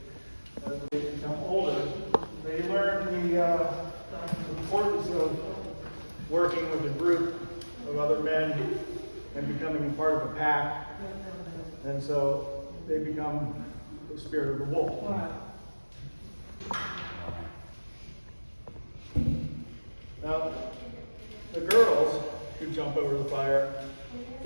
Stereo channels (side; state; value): both; inverted; correlation -1.00